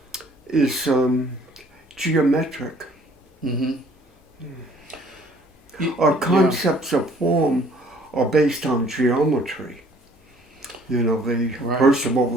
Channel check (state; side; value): normal; both; correlation 0.58